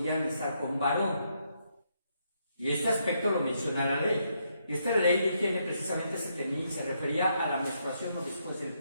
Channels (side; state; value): both; inverted; correlation -0.77